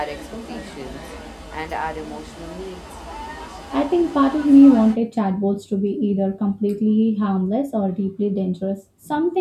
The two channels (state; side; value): identical; both; correlation 1.00